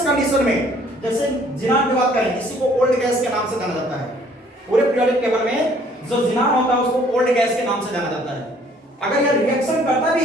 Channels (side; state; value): both; normal; correlation 0.59